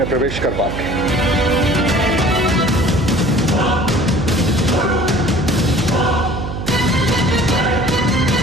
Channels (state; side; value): noise; right; hum, 6 dB below the sound